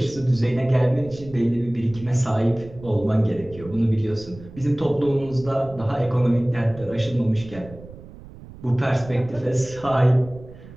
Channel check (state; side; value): noise; right; rumble, 18 dB below the sound